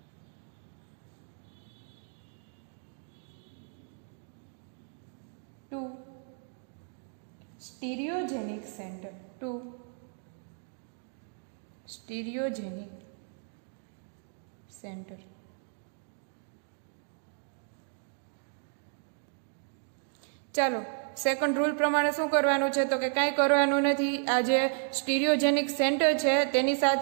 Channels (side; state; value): left; silent; 56 dB below the other